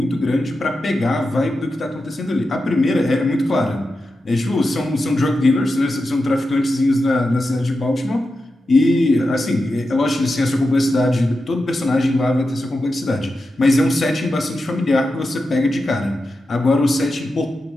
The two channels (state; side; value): normal; both; correlation 0.90